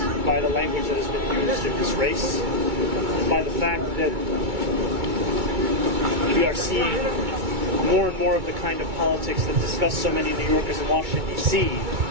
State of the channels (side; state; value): left; late; 2.3 ms